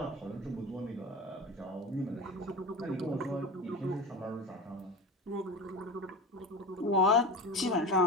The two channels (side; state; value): both; normal; correlation 0.29